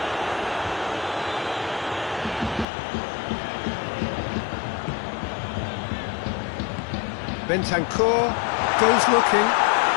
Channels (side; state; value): right; drops out; at 2.7 s